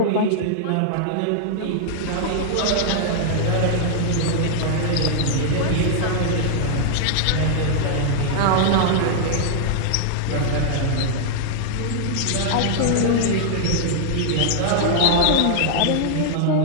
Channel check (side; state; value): both; different; correlation -0.01